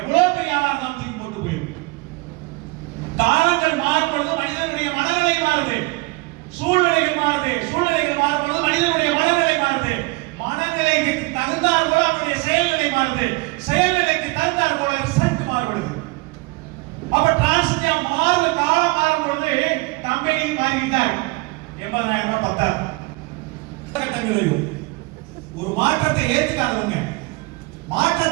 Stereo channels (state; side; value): quieter; left; 25.0 dB